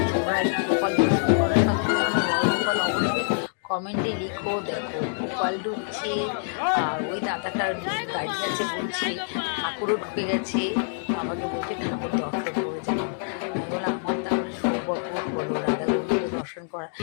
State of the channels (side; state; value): right; silent; digital silence